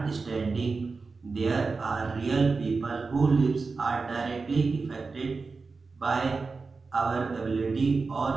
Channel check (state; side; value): quieter; left; 4.3 dB